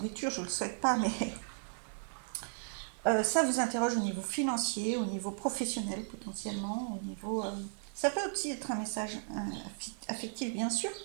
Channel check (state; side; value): silent; left; digital silence